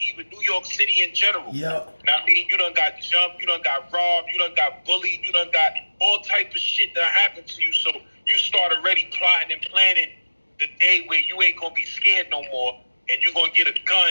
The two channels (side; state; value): both; inverted; correlation -1.00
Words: even New York City in general. Yeah. Now, I mean, you done got jumped, you done got robbed, you done got bullied, you done got all type of shit that happened to you. So you start already plotting and planning the day where you ain't gonna be scared no more, and you're gonna get a